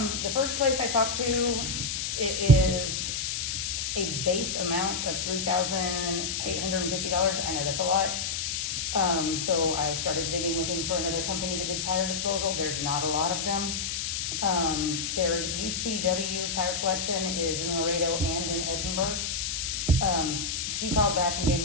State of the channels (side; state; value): left; noise; hiss, 2 dB below the sound